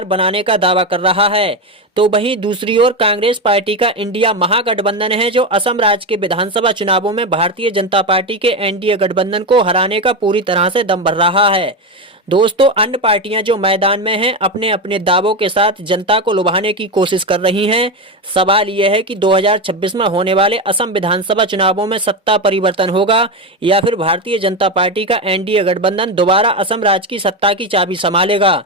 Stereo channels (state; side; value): normal; both; correlation 0.14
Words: बनाने का दावा कर रहा है। तो वहीं दूसरी ओर कांग्रेस पार्टी का इंडिया महागठबंधन है, जो असम राज्य के विधानसभा चुनावों में भारतीय जनता पार्टी के एनडीए गठबंधन को हराने का पूरी तरह से दम भर रहा है। दोस्तों अन्य पार्टियां जो मैदान में हैं, अपने अपने दावों के साथ जनता को लुभाने की कोशिश कर रही हैं। सवाल यह है कि 2026 में होने वाले असम विधानसभा चुनावों में सत्ता परिवर्तन होगा या फिर भारतीय जनता पार्टी का एनडीए गठबंधन दोबारा असम राज्य की सत्ता की चाबी संभालेगा।